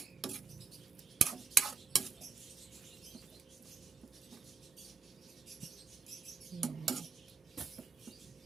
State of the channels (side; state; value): left; quieter; 5.3 dB